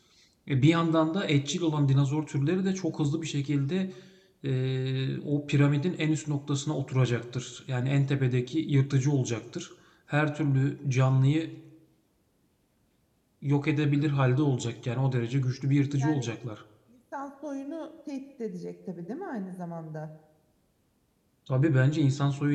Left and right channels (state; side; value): identical; both; correlation 1.00